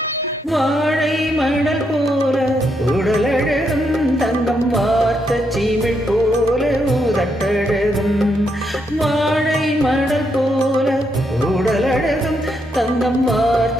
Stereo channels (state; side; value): normal; both; correlation 0.79